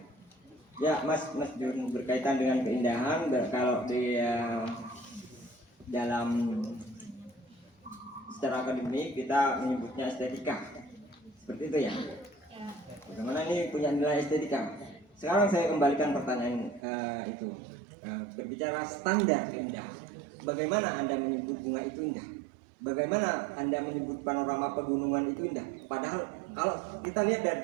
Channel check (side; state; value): left; drops out; at 16.8 s